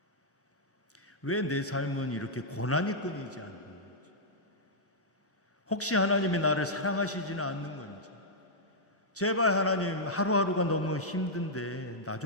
왜 내 삶은 이렇게 고난이 끊이지 않는 건지, 혹시 하나님이 나를 사랑하시지는 않는 건지, 제발 하나님 하루하루가 너무 힘든데 나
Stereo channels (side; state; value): both; normal; correlation -0.08